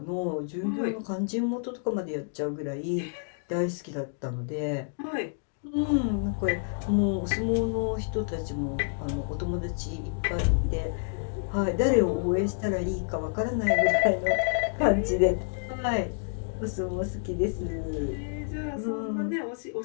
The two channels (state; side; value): silent; right; digital silence